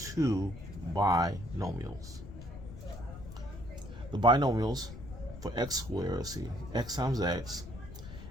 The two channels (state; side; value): noise; left; rumble, 12 dB below the sound